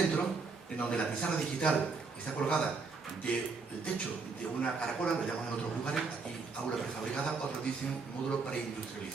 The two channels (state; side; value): quieter; left; 4.5 dB